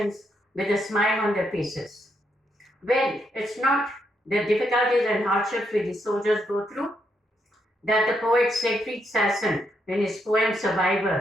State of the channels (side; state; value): both; normal; correlation 0.79